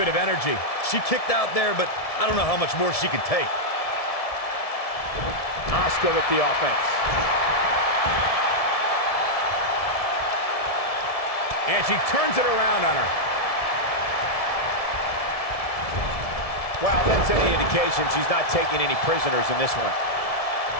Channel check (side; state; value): right; late; 1.7 ms